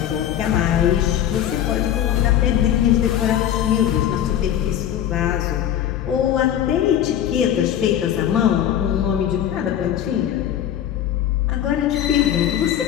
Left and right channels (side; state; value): right; quieter; 10.7 dB